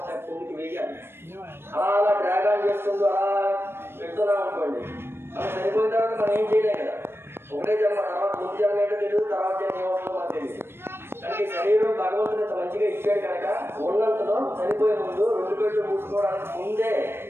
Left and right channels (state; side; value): late; left; 0.11 ms